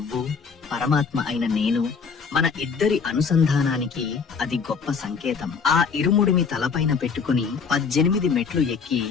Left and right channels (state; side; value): quieter; right; 5.7 dB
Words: పరమాత్మ అయిన నేను, మన ఇద్దరి అనుసంధానానికి అది గొప్ప సంకేతం. ఆ ఇరుముడిని తలపైన పెట్టుకుని 18 మెట్లు ఎక్కి